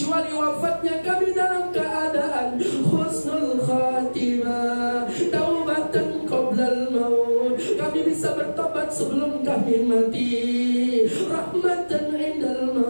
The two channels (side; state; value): both; inverted; correlation -1.00